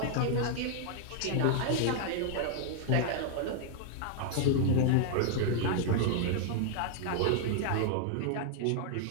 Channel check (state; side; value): different; both; correlation 0.00